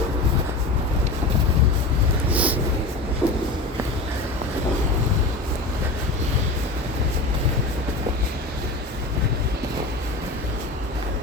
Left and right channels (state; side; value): quieter; right; 3.2 dB